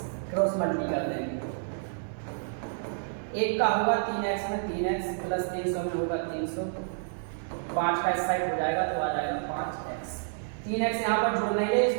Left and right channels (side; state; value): left; silent; digital silence